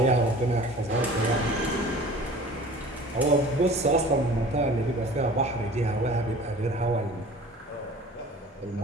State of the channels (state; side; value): normal; both; correlation 0.44